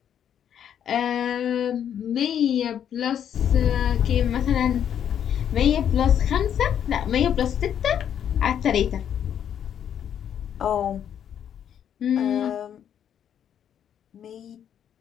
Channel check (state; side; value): quieter; right; 9.2 dB